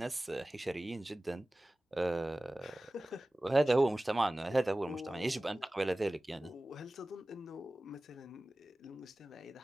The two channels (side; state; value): both; normal; correlation 0.97